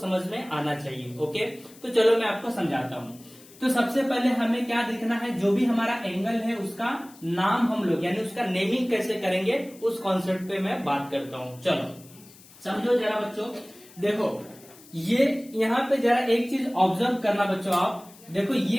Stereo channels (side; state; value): left; noise; hiss, 23 dB below the sound